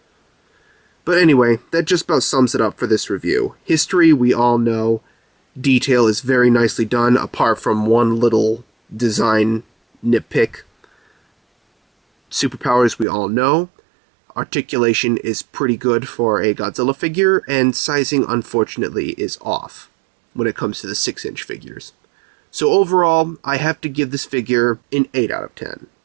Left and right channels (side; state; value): left; drops out; at 13.1 s